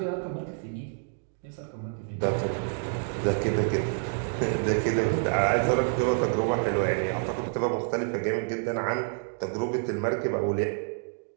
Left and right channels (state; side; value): silent; left; 59 dB below the other